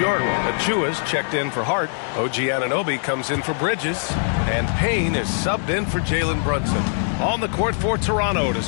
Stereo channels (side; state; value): right; silent; 64 dB below the other